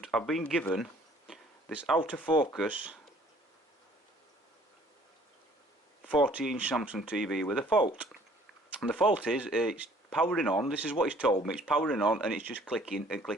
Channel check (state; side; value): normal; both; correlation 0.57